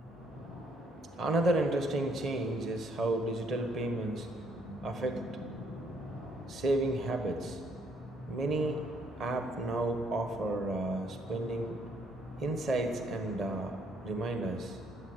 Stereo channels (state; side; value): normal; both; correlation 0.68